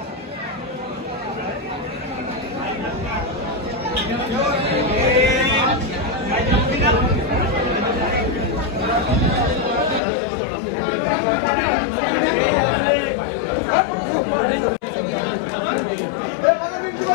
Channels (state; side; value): drops out; right; at 10.0 s